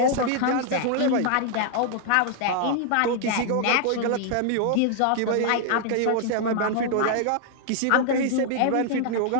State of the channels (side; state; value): both; different; correlation 0.00